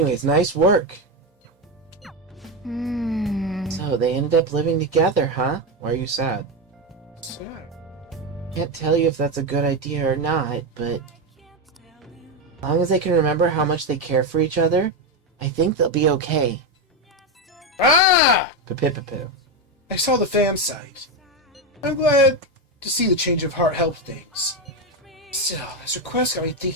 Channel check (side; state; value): both; normal; correlation 0.10